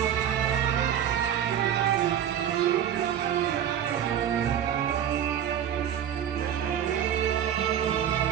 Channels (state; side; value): quieter; left; 9.7 dB